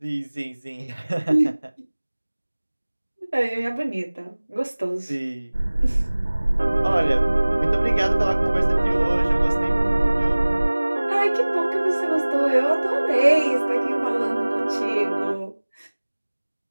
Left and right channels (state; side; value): inverted; both; correlation -1.00